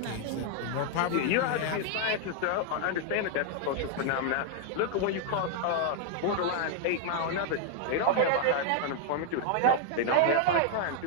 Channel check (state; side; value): different; both; correlation 0.00